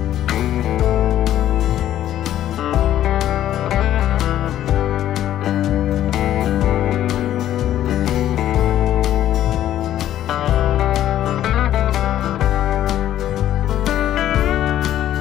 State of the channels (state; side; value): quieter; right; 12.1 dB